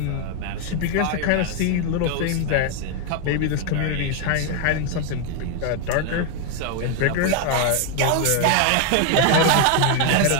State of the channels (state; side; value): different; both; correlation 0.01